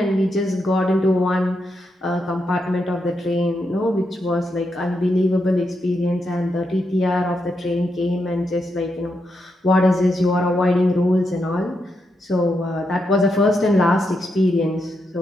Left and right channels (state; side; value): normal; both; correlation 0.83